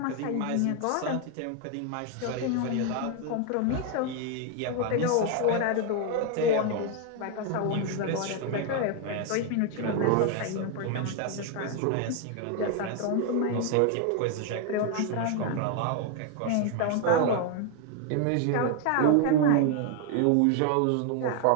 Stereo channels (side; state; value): both; different; correlation 0.00